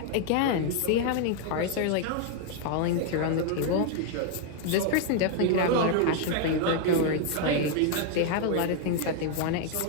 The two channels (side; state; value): both; different; correlation 0.00